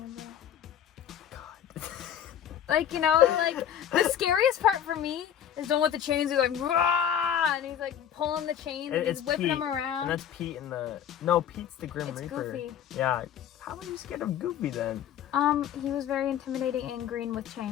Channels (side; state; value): right; quieter; 9.6 dB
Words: a little. God. Like, you know, like, the scariest part for me is the one with the chains. He's like, rah! And he's like pulling the chains and he's whipping Pete, them around. And that's Pete in the... No, Pete's the Grim It's Reaper. Goofy. Yeah. How are you scared of Goofy then? He was very intimidating and green with